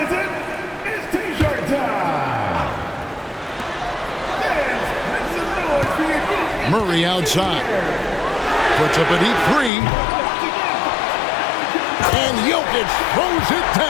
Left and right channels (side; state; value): right; drops out; at 9.7 s